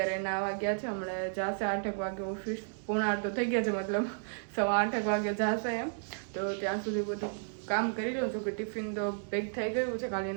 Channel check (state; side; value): silent; left; digital silence